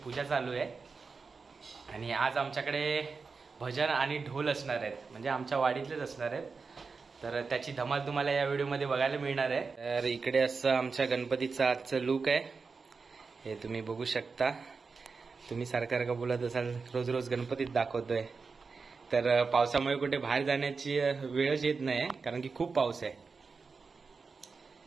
चालू आहे आणि आज आमच्याकडे भजन आणि ढोल असणार आहेत, म्हणजे आमच्या वाडीतलेच असणार आहेत। तर त्याची धमाल तुम्हाला या व्हिडिओमध्ये बघायला मिळणार आहे। तर इकडे असं आमच्या गणपतीचा आजचं लुक आहे, हे तुम्ही बघू शकता। तुम्ही सारखं बोलत असाल रोज रोज गणपतीत दाखवतोय, तर पावसामुळे कुठे बाहेर जाण्याची वेळच येत नाही कारण की खूप पाऊस आहे।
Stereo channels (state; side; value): quieter; left; 4.7 dB